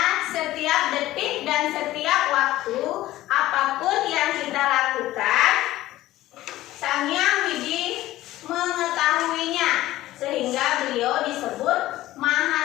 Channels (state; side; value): quieter; right; 15.7 dB